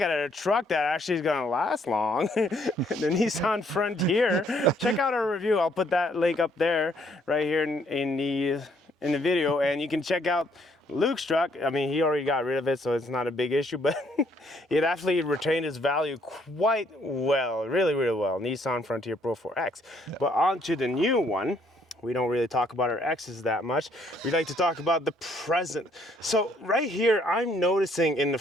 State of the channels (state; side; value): normal; both; correlation 0.67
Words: a truck that actually is going to last long, the Nissan Frontier, check out our review. I'll put that link up there right here in the video, and you can check out Luke's truck. I mean, he already got rid of it, so it's not a big issue, but it actually retained its value quite well, really, really well. Nissan Frontier Pro 4X. Yeah. But on to the new one. We don't really talk about our X's that much. We like to talk about the present. So right here, I'm noticing in the